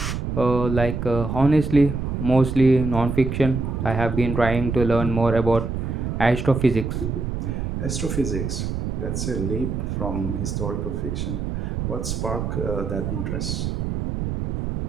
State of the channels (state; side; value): noise; right; rumble, 3 dB below the sound